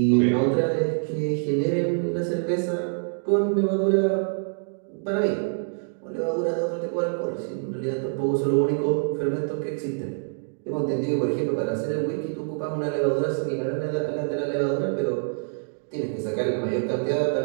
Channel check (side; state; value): left; silent; digital silence